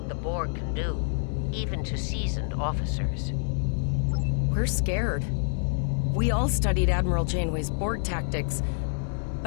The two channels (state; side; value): silent; right; digital silence